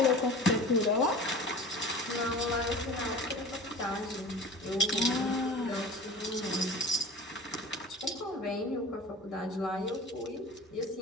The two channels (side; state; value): both; normal; correlation 0.38